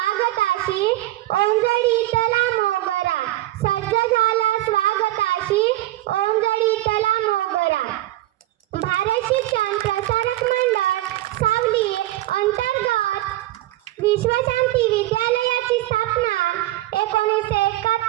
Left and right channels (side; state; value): left; quieter; 16.0 dB